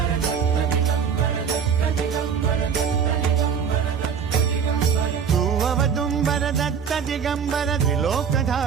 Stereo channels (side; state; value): left; quieter; 7.0 dB